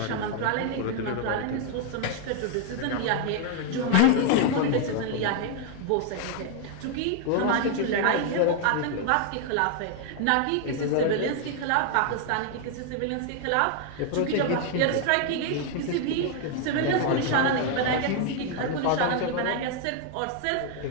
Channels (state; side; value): different; both; correlation 0.00